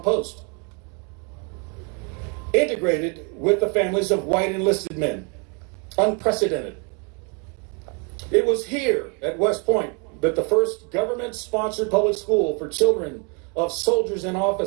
post, integrated with the families of white enlisted men. Unprecedented. It was here at West Point that the first government-sponsored public school for children of soldiers and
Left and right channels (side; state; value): left; quieter; 35.0 dB